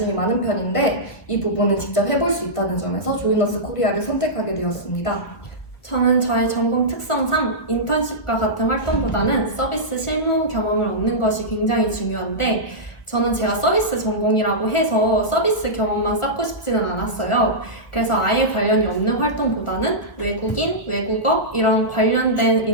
많은 편인데 이 부분을 직접 해볼 수 있다는 점에서 조이너스 코리아를 선택하게 되었습니다. 저는 저의 전공 특성상 인턴십과 같은 활동보다는 서비스 실무 경험을 얻는 것이 굉장히 중요한데 저는 제가 서비스 전공이라고 해서 서비스 경험만 쌓고 싶지는 않았어요. 그래서 아예 관련이 없는 활동보다는 외국인, 외국어 이런 관련된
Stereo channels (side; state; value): right; late; 1.4 ms